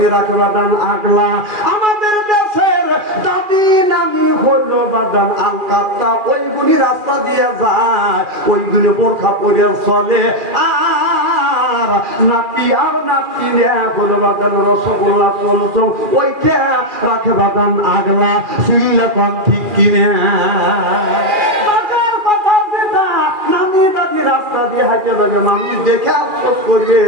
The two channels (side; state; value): left; late; 2.4 ms